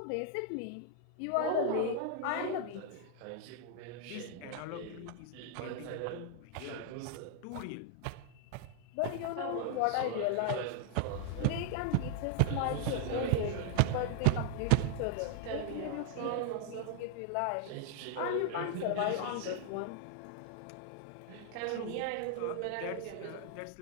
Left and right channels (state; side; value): different; both; correlation 0.00